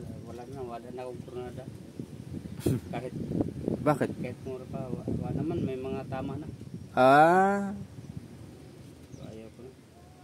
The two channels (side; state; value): both; identical; correlation 1.00